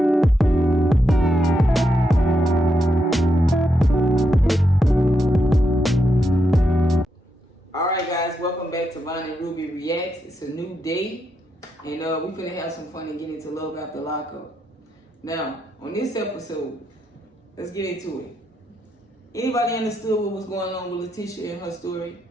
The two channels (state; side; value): normal; both; correlation 0.82